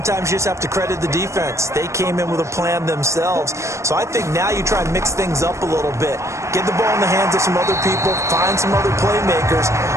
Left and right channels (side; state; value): left; late; 0.14 ms